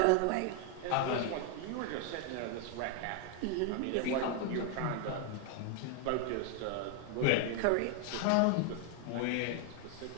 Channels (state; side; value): different; both; correlation 0.01